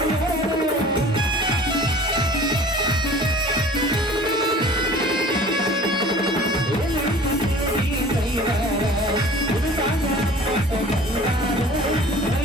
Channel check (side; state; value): both; normal; correlation 0.45